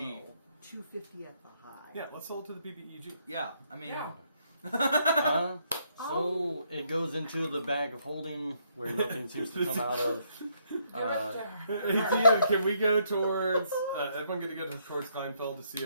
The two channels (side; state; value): both; inverted; correlation -0.72